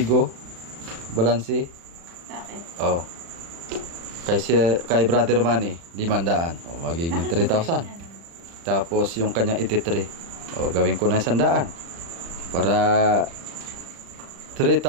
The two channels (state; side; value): late; left; 36 ms